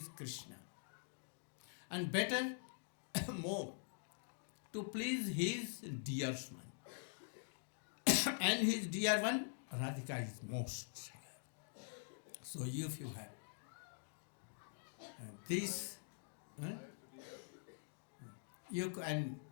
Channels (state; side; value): silent; right; digital silence